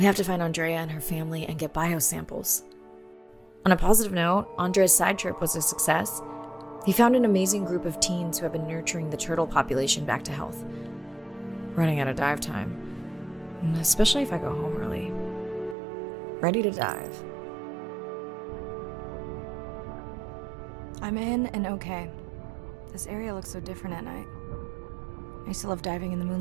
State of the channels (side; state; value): left; drops out; at 15.8 s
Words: have to find Andrea and her family and get biosamples. On a positive note, Andrea's side trip was a success. He found an amazing group of teens who have been nurturing the turtle population back to health. Running out of dive time, especially if I go home early. Ready to dive. I'm in and okay. This area looks so different at night. I used to love diving in the